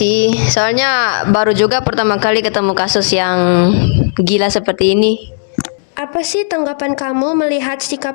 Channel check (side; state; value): right; silent; digital silence